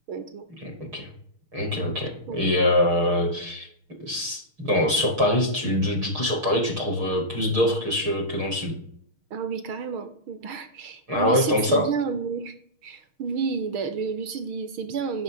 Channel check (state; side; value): late; left; 6.5 ms